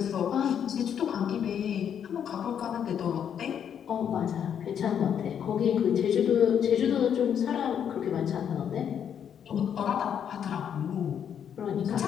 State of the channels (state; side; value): quieter; right; 8.5 dB